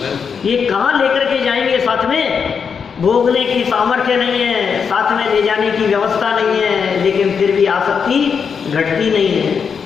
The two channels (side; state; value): right; quieter; 6.3 dB